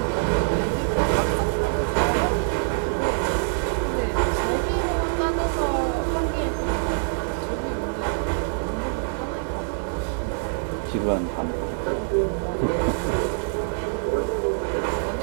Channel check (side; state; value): left; silent; digital silence